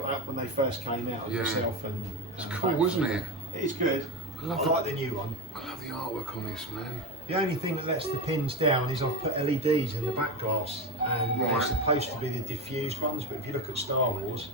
that when they first came out, Yeah. myself and... It's cool, isn't it? It's good. I I love like the new one. I love the artwork on this, man. The only thing that lets the pins down is I've put LEDs in the back glass, and they're Right. supposed to be the diffused ones, but if you look at Star Wars,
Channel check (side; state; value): both; normal; correlation 0.19